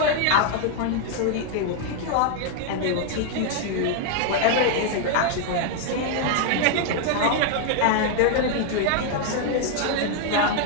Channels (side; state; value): both; different; correlation 0.00